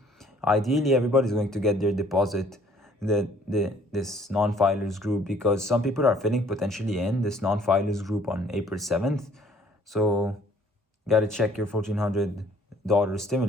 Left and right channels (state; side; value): normal; both; correlation 0.58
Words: Ideally, everybody's going to get their deposit, this non-filers group, because some people are filling potentially in this non-filers group on April 7th. So gotta check your $1,400